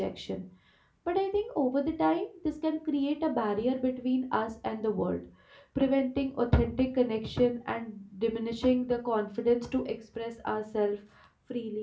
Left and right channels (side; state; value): both; identical; correlation 1.00